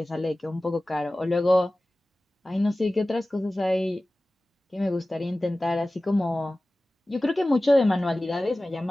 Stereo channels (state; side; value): normal; both; correlation 0.97